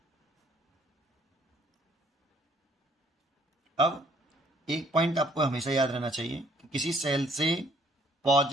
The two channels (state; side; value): normal; both; correlation 0.62